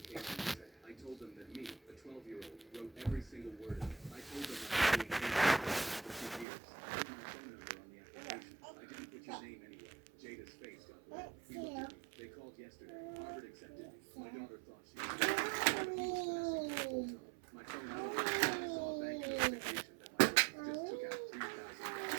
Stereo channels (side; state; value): left; drops out; at 6.5 s